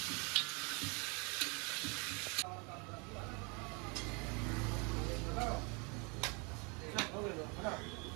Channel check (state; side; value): quieter; left; 31.7 dB